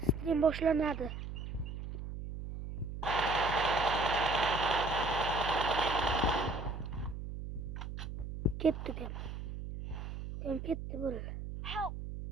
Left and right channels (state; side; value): noise; right; hum, 7 dB below the sound